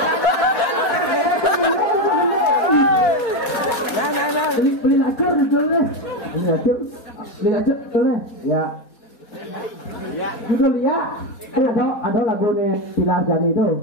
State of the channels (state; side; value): late; right; 4.2 ms